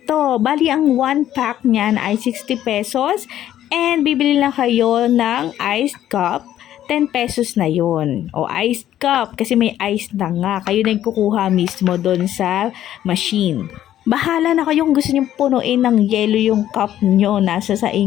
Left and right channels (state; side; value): quieter; right; 12.0 dB